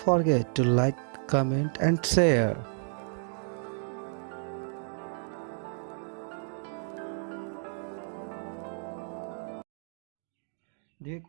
to like, comment and share. देखिए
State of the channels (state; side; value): silent; left; digital silence